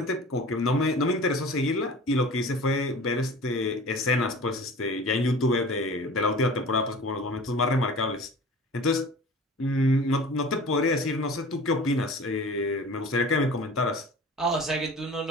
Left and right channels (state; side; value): normal; both; correlation 0.41